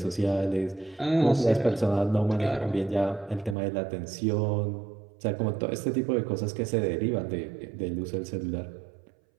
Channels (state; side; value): drops out; left; at 3.6 s